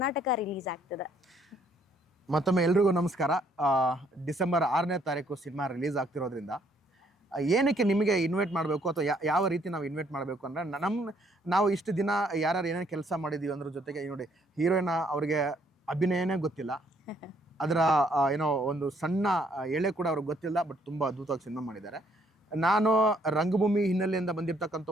ರಿಲೀಸ್ ಆಗ್ತದೆ. ಮತ್ತೊಮ್ಮೆ ಎಲ್ರಿಗೂ ನಮಸ್ಕಾರ. ಡಿಸೆಂಬರ್ 6ನೇ ತಾರೀಕು ಸಿನಿಮಾ ರಿಲೀಸ್ ಆಗ್ತಿರೋದ್ರಿಂದ ಏನಕ್ಕೆ ನಿಮಗೆ ಇನ್ವೈಟ್ ಮಾಡಬೇಕು ಅಥವಾ ಯಾವ ರೀತಿ ನಾವು ಇನ್ವೈಟ್ ಮಾಡಬೇಕು ಅಂದರೆ, ನಾವು ಇಷ್ಟು ದಿನ ಯಾರ್ಯಾರು ಏನೇನು ಕೆಲಸ ಮಾಡಿದ್ದೀವಿ ಅದ್ರ ಜೊತೆಗೆ ನೋಡಿ, ಹೀರೋಯಿನ್ ಅವ್ರಿಗೆ ಅಭಿನಯನೇ ಗೊತ್ತಿಲ್ಲ, ಅದರ ಏನೋ ಒಂದು ಸಣ್ಣ ಎಳೆ ಕೂಡ ಅವ್ರಿಗೆ ಗೊತ್ತಿಲ್ಲ, ಬಟ್ ತುಂಬ ಅದ್ಭುತವಾಗಿ ಸಿನಿಮಾ ಮಾಡಿದ್ದಾರೆ. ನಾನು ರಂಗಭೂಮಿ ಹಿನ್ನೆಲೆಯಿಂದ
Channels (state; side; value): normal; both; correlation 0.67